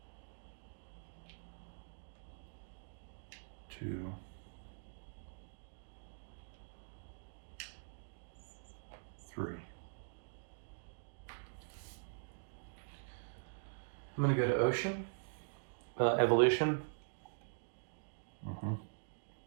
2, 3. I'm going to go to ocean, evolution.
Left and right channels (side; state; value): left; silent; digital silence